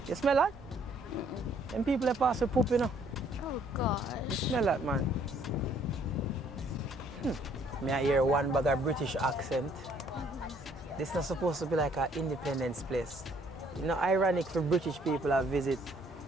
You smell that? Them people that pass with poop, you know. Oh gosh. You smell that, man. May I hear one bag of British accent? This is not supposed to be like an independence place. You know, ironic for British people to visit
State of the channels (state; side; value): normal; both; correlation 0.63